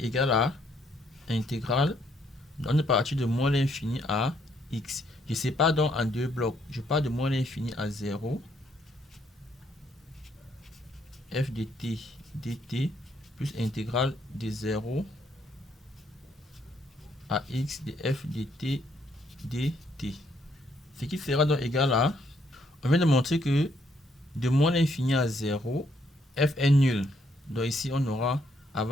à intégrale. On est parti de moins l'infini à x. Je sépare donc en deux blocs. Je pars de moins l'infini à 0. F de t dt plus intégrale de 0 à x de f de t dt. Ce qui sera donc égal à, on vient de montrer que de moins l'infini à 0, f est nul. Donc ici on aura,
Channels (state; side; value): normal; both; correlation 0.71